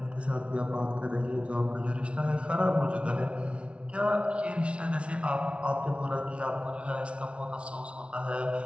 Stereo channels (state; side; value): late; left; 0.060 ms